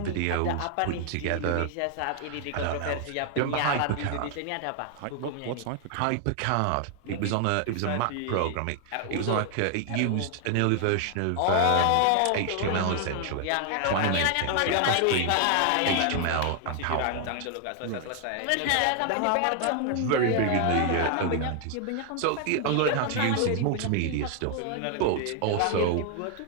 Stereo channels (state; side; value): different; both; correlation 0.00